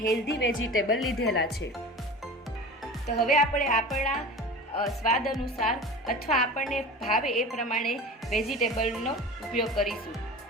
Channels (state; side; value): normal; both; correlation 0.34